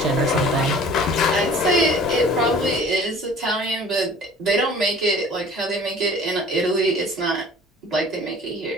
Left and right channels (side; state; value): both; normal; correlation 0.48